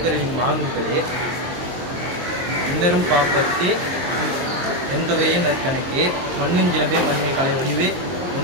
மாண்புகளே இன்னரும் பாப்பத்தே எந்தொகையே நற்கணக்கே மண்ணுஞ்சிலம்பே மண்ணின் கலை வடிவே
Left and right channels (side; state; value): left; late; 22 ms